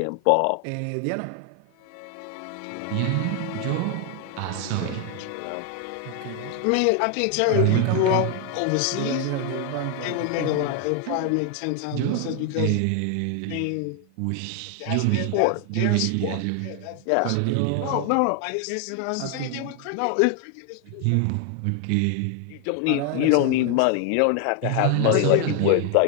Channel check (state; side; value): different; both; correlation 0.00